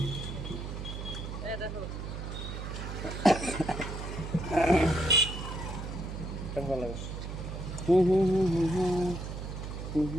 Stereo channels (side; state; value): right; noise; hum, 7 dB below the sound